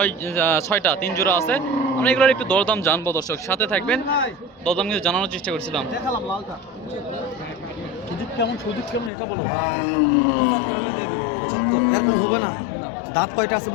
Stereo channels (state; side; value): drops out; right; at 9.1 s